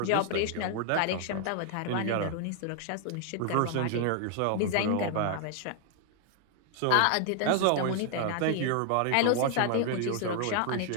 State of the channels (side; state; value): both; different; correlation 0.00